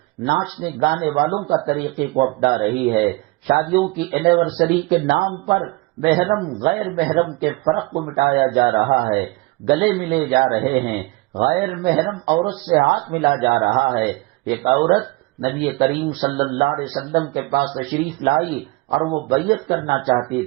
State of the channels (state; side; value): quieter; left; 23.0 dB